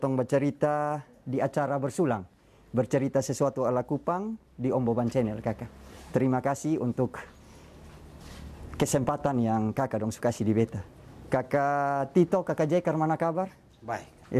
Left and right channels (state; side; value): identical; both; correlation 1.00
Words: bercerita di acara bersulang. Bercerita sesuatu ala Kupang di Om Boban Channel kakak. Terima kasih untuk kesempatan yang kakak dong suka kasih di beta. Kakak Tito, kakak Jekar mana kabar? Baik.